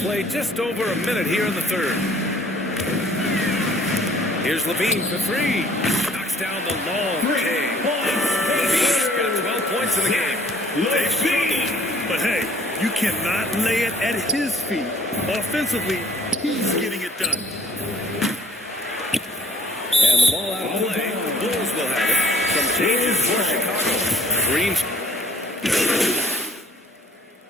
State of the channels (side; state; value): both; normal; correlation 0.57